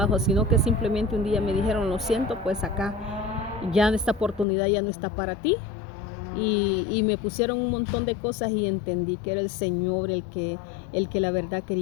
sino que simplemente un día me dijeron, lo siento, pues acá ya esta oportunidad ya no está para ti. Y me pusieron un montón de cosas y entendí que era el Señor el que la verdad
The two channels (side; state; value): right; drops out; at 4.5 s